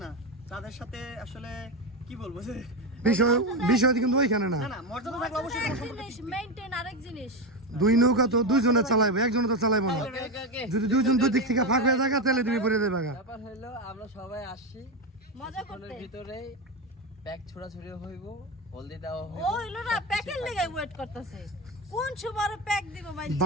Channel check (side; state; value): both; normal; correlation 0.15